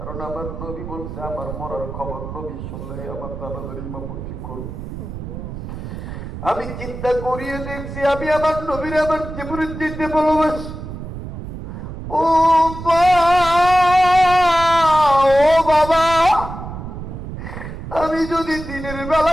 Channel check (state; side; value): noise; right; rumble, 9 dB below the sound